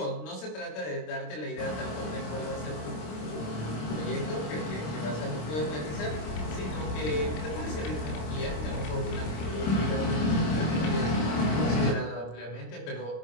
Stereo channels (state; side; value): late; right; 26 ms